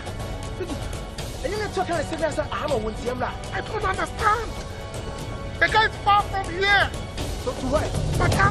And you're not talking like I don't understand. The guy is far from here. So to where? I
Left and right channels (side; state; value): both; identical; correlation 1.00